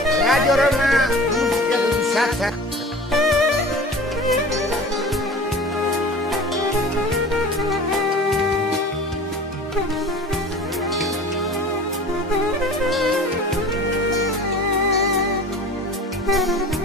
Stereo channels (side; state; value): both; normal; correlation 0.39